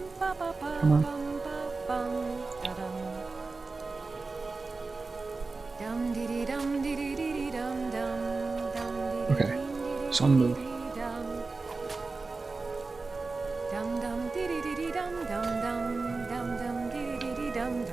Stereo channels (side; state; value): left; quieter; 3.9 dB